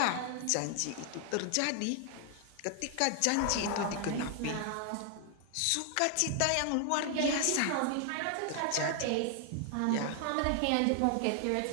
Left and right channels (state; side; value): different; both; correlation 0.00